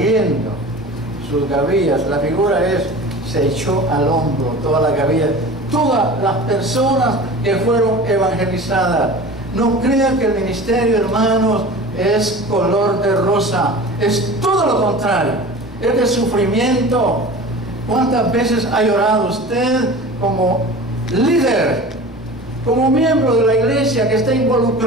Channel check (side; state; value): right; noise; rumble, 27 dB below the sound